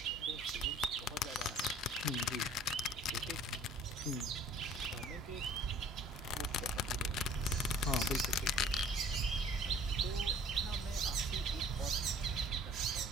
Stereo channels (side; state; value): both; normal; correlation 0.52